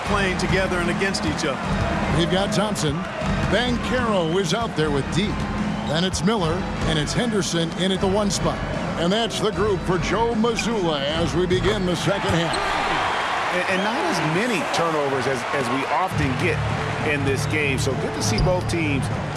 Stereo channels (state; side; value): identical; both; correlation 1.00